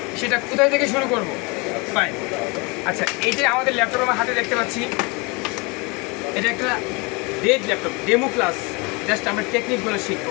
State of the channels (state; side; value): quieter; right; 28.3 dB